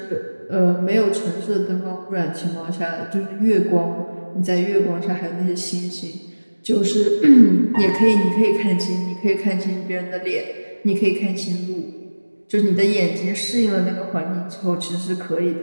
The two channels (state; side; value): inverted; both; correlation -1.00